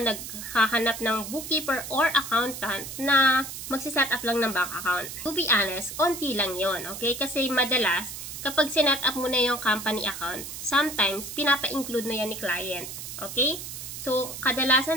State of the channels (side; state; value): right; noise; hiss, 9 dB below the sound